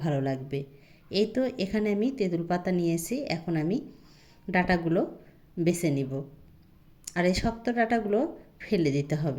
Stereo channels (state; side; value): identical; both; correlation 1.00